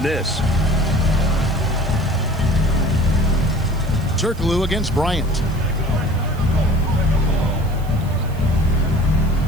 this. Turkoglu against Bryant.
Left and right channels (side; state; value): right; noise; hiss, 23 dB below the sound